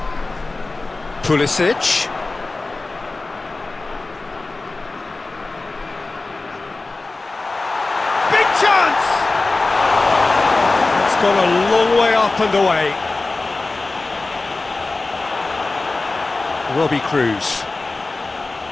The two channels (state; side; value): quieter; right; 3.4 dB